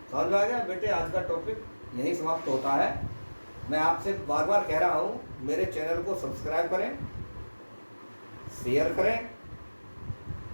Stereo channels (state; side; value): inverted; both; correlation -1.00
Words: समझ में आ गया बेटे? आज का टॉपिक यही समाप्त होता है। मैं आपसे बार बार कह रहा हूँ, मेरे चैनल को सब्सक्राइब करें, शेयर करें,